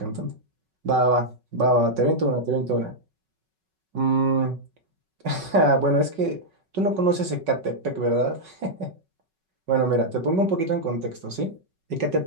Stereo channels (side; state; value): left; late; 5.3 ms